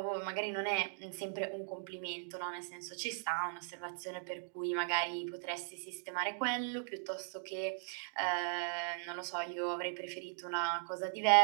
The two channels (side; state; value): left; silent; digital silence